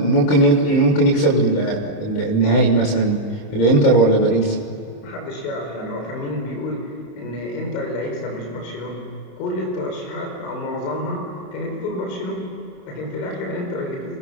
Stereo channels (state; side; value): late; right; 28 ms